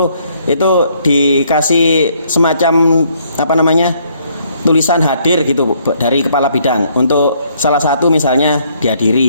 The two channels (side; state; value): both; inverted; correlation -0.67